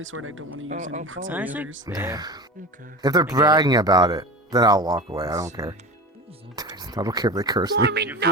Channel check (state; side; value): normal; both; correlation 0.30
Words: sword I don't want to use any others. If they're bragging about it, then I'll walk away. I don't care. I don't care if they curse me. You